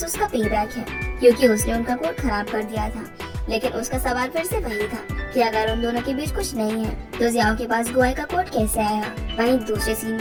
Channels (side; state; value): both; identical; correlation 1.00